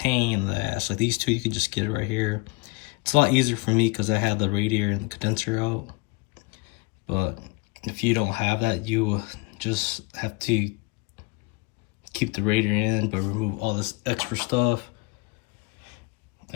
in the ass. Like these two, you could just get it right here. It's a lot easier for me because I had the radiator and the condenser out. But if you don't have that, you just have to keep the radiator in, but remove all this extra stuff.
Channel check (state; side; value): quieter; right; 27.3 dB